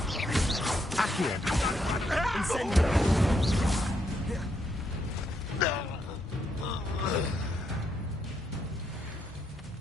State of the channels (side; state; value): both; normal; correlation 0.77